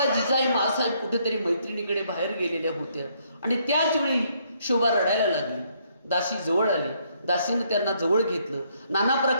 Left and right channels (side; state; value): both; inverted; correlation -0.70